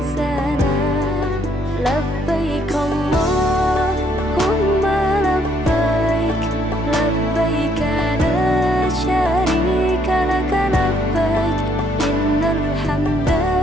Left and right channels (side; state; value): both; normal; correlation 0.69